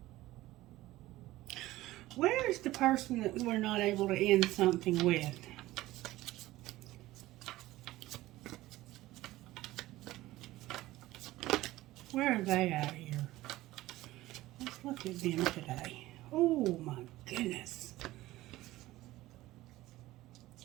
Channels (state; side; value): quieter; left; 16.9 dB